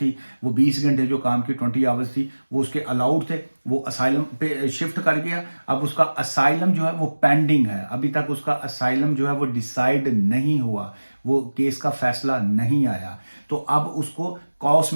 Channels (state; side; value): inverted; both; correlation -1.00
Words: वो 20 घंटे जो काम की 20 आवर्स थी, वो उसके अलाउड थे, वो असाइलम पे शिफ्ट कर गया। अब उसका असाइलम जो है वो पेंडिंग है, अभी तक उसका असाइलम जो है वो डिसाइड नहीं हुआ, वो केस का फैसला नहीं आया। तो अब उसको कॉस